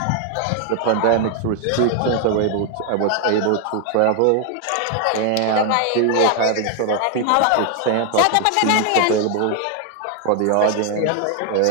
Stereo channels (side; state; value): both; different; correlation 0.01